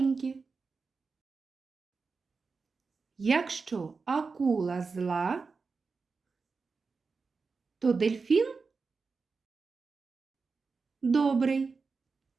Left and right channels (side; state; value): left; quieter; 4.6 dB